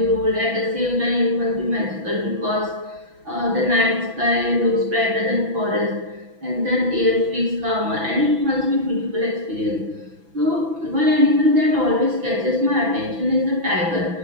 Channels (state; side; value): late; left; 6.0 ms